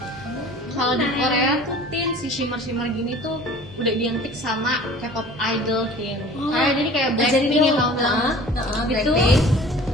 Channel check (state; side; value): normal; both; correlation 0.45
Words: Kalau di Korea tuh Tin, si shimmer gini tuh udah identik sama K-pop idol Tin. Jadi kayak Blackpink yang tahu gitu.